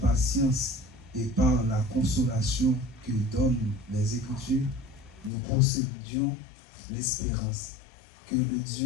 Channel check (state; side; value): drops out; right; at 5.3 s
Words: et par la consolation que donnent les Écritures, nous possédions l'espérance. Que le